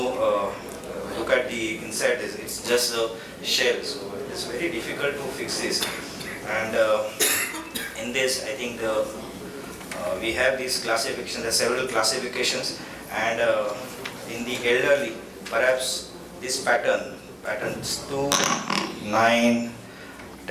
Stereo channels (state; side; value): identical; both; correlation 1.00